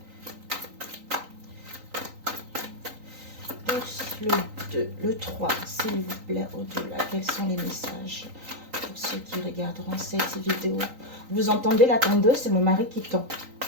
Pour le 2, le 3, s'il vous plaît, au-delà. Quels sont les messages pour ceux qui regarderont cette vidéo? Vous entendez la tondeuse? C'est mon mari qui tond.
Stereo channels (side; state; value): left; late; 3.9 ms